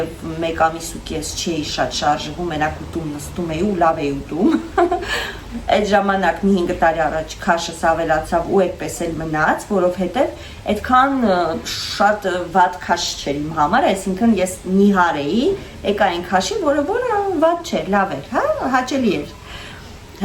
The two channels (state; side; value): identical; both; correlation 1.00